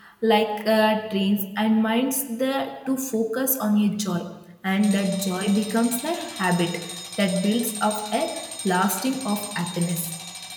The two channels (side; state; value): both; identical; correlation 1.00